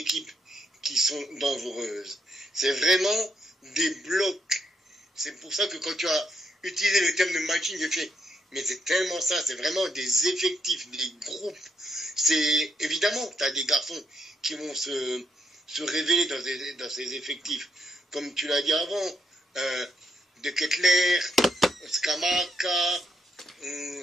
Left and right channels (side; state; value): both; normal; correlation 0.77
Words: qui sont dangereuses. C'est vraiment des blocs. C'est pour ça que quand tu as utilisé le terme de matching, j'ai fait, mais c'est tellement ça, c'est vraiment des effectifs, des groupes. C'est évidemment que tu as des garçons qui vont se révéler dans ces effectifs. Comme tu l'as dit avant, De Ketelaere, Scamacca,